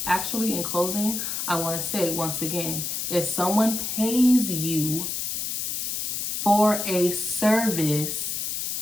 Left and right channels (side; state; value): left; noise; hiss, 2 dB below the sound